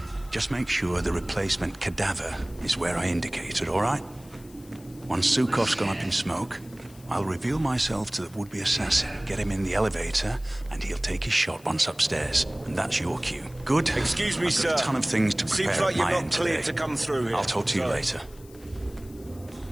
Just make sure the replacement cadaver is where I indicated, all right? Once Sukov's gone up in smoke, I'll reveal myself to the would-be assassin, get him in the elevator, and he'll take his shot once upstairs. And that's your cue. Good? Excuse me, I've sir. got a ton of things to prepare. Seems like at you're my not end cleared today. to come through here. I'll talk to you later.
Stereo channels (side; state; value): left; noise; hiss, 24 dB below the sound